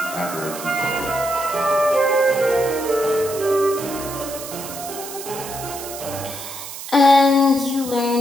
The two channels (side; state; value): right; noise; hiss, 10 dB below the sound